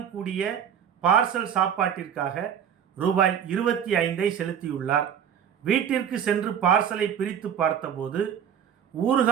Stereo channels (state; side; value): quieter; left; 8.5 dB